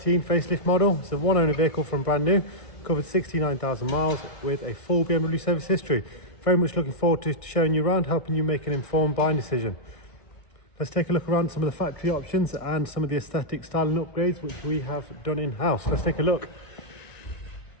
facelift model. It's a one owner vehicle from brand new, covered 69,000 miles with a full BMW service history. Very much looking forward to showing you around, helping you make an informed buying decision. Let's take a look around some of the factory options and some of the aesthetic styling upgrades which we have done in-house. Let's take a look.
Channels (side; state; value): right; late; 1.6 ms